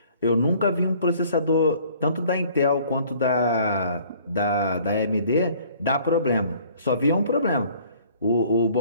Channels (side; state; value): both; inverted; correlation -0.56